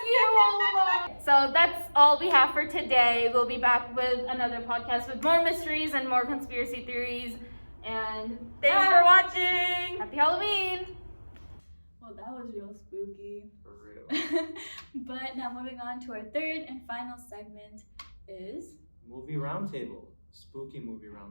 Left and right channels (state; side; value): inverted; both; correlation -1.00